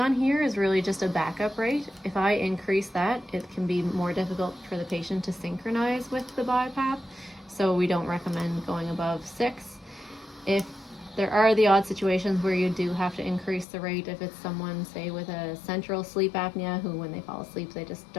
here is really just a backup rate. If I increase that, it can be more difficult for the patient to synchronize with the BiPAP, so we don't recommend going above 6. If there are the odd situations where you do have to increase the rate, if it's someone, say, with a central sleep apnea who, when they fall asleep, they just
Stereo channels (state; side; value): drops out; right; at 13.7 s